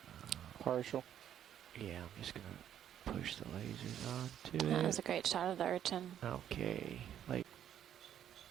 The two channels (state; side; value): quieter; left; 10.1 dB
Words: Partial. Yeah, I'm just going to push the lasers onto it. That was a great shot of the urchin. Okay.